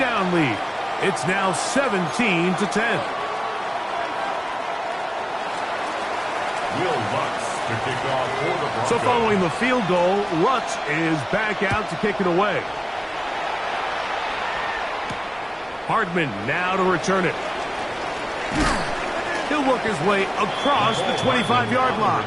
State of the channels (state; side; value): identical; both; correlation 1.00